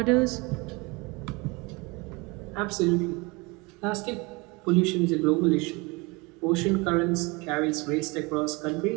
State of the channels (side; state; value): left; quieter; 26.2 dB